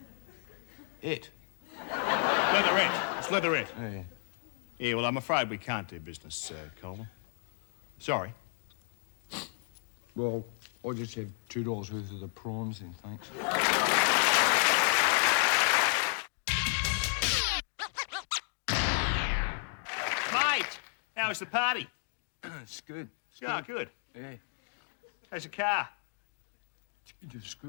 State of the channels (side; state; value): right; silent; 56 dB below the other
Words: Leatherette. It's leatherette. Yeah. Yeah, well, I'm afraid we can't do business, Colin. Sorry. Well, I'll just have $2 worth of the prawns then, thanks. Mate, how was the party? It's good. Yeah, good. Yeah. How's the car? It's